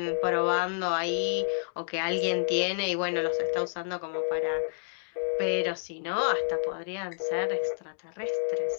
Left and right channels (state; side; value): silent; right; digital silence